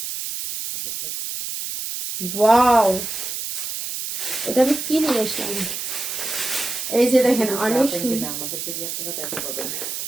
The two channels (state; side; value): noise; right; hiss, 5 dB below the sound